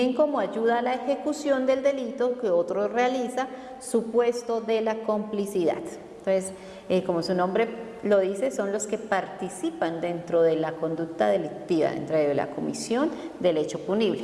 como ayuda a la ejecución del delito que otro realiza, supuesto de la complicidad. Entonces, como su nombre lo dice, son los que participan dentro de la conducta delictiva, dentro de la comisión del hecho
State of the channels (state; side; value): identical; both; correlation 1.00